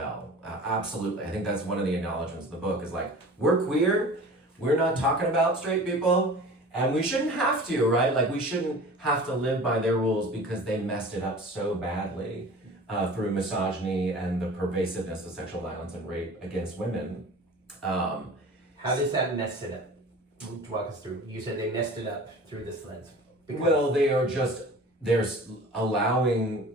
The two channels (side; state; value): both; normal; correlation 0.41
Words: Absolutely. I think that's one of the acknowledgements of the book, is like, we're queer, we're not talking about straight people, and we shouldn't have to, right? Like, we shouldn't have to live by their rules because they messed it up so badly through misogyny and the pervasiveness of sexual violence and rape against women. How does that mess it up? Walk us through. You said they messed it up through this lens. Well, they're